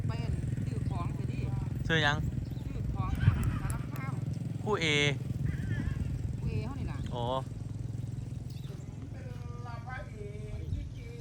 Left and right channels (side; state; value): both; identical; correlation 1.00